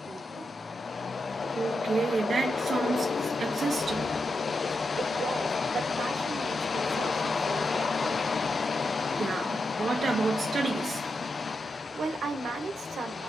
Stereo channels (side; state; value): both; normal; correlation 0.86